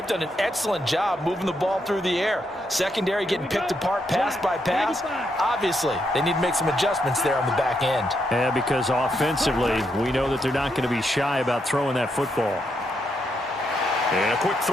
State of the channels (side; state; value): both; normal; correlation 0.80